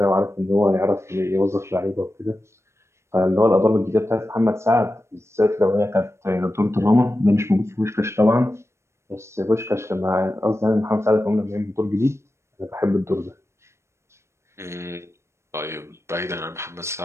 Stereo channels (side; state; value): left; late; 0.13 ms